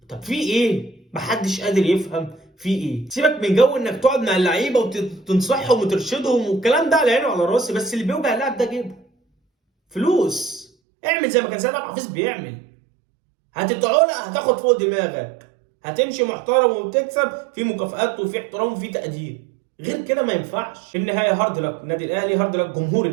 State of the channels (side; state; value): left; drops out; at 10.7 s